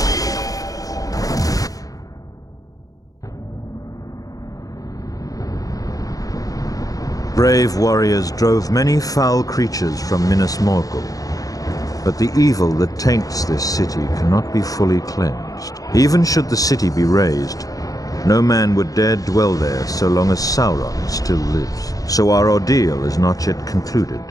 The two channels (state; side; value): late; right; 0.17 ms